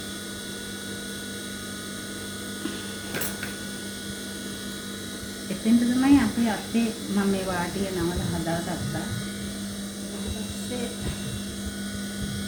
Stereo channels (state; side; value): identical; both; correlation 1.00